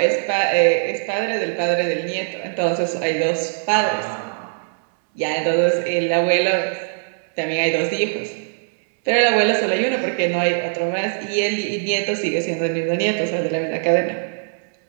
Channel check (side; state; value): left; silent; digital silence